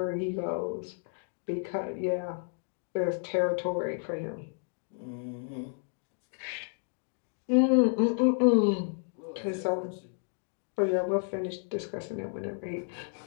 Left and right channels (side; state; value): right; silent; 57 dB below the other